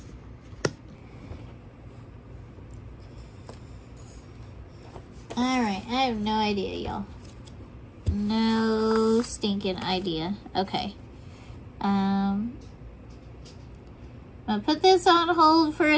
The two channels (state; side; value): identical; both; correlation 1.00